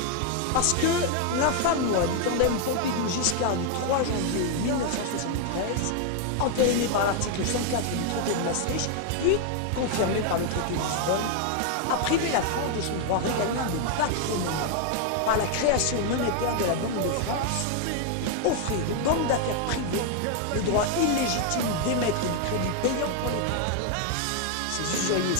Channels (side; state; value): both; different; correlation 0.00